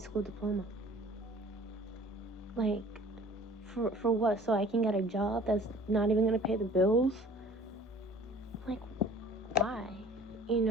diploma? Like, for what? So I can get a job that's not even going to pay the bills? Like, why? You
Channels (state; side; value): normal; both; correlation 0.49